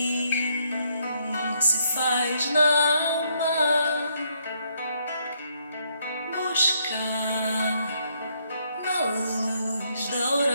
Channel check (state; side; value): inverted; both; correlation -0.72